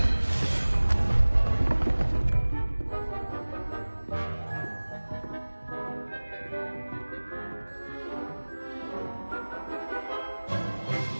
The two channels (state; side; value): inverted; both; correlation -1.00